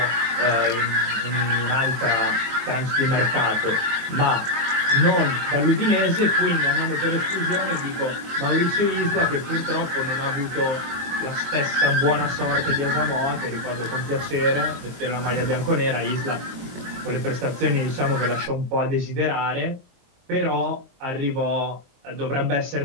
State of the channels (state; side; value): late; left; 22 ms